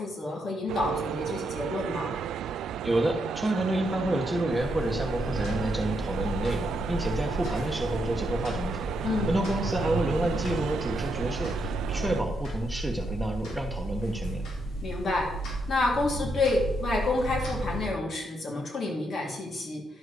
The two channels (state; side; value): normal; both; correlation 0.79